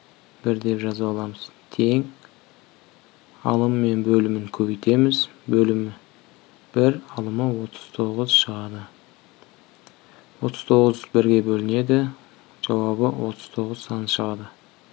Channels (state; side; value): quieter; right; 22.6 dB